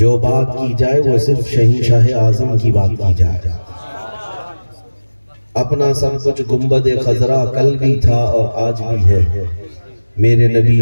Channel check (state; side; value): inverted; both; correlation -1.00